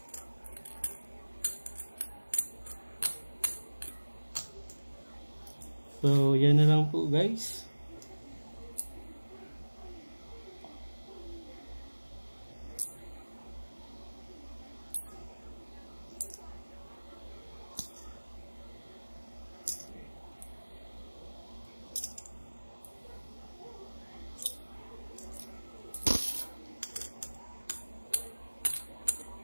So yan na lang po guys.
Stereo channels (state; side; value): inverted; both; correlation -1.00